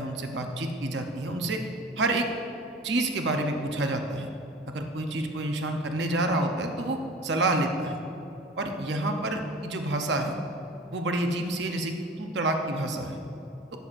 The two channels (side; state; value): both; normal; correlation 0.41